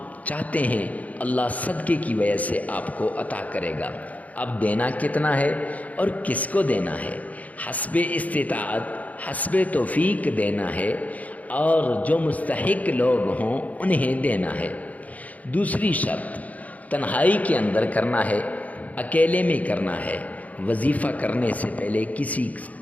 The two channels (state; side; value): late; right; 0.073 ms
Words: چاہتے ہیں اللہ صدقے کی وجہ سے آپ کو عطا کرے گا۔ اب دینا کتنا ہے اور کس کو دینا ہے؟ حسب استطاعت، حسب توفیق دینا ہے، اور جو مستحق لوگ ہوں انہیں دینا ہے۔ دوسری شرط، تنہائی کے اندر کرنا ہے، اکیلے میں کرنا ہے۔ وظیفہ کرنے سے پہلے کسی